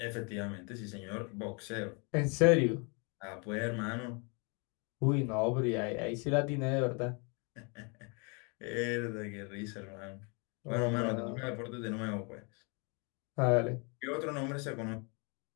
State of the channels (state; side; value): quieter; right; 33.9 dB